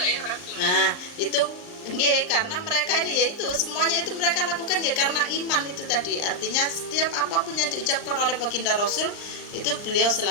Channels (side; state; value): right; late; 39 ms